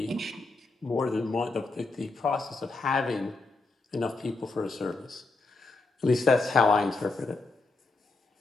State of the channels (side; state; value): right; quieter; 3.6 dB